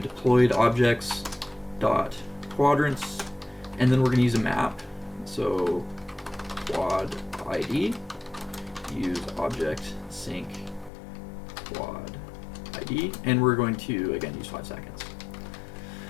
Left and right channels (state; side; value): drops out; right; at 10.9 s